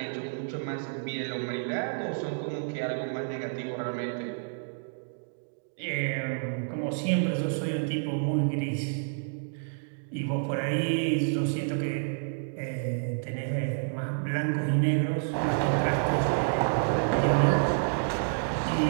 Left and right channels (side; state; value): left; silent; digital silence